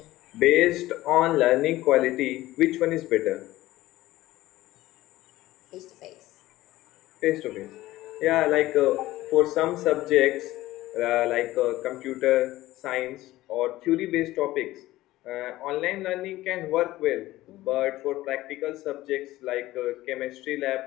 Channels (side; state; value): right; quieter; 16.7 dB